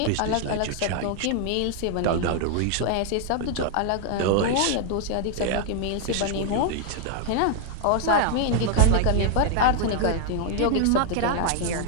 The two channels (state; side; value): different; both; correlation 0.00